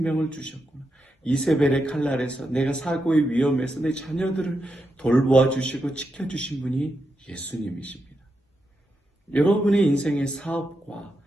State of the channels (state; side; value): normal; both; correlation 0.85